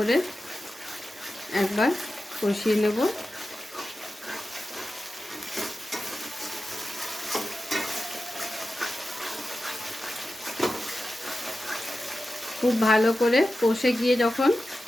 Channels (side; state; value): both; normal; correlation 0.93